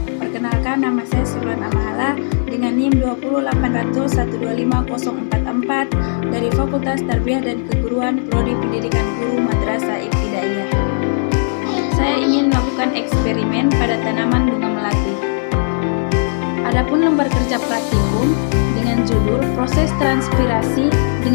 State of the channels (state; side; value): silent; right; digital silence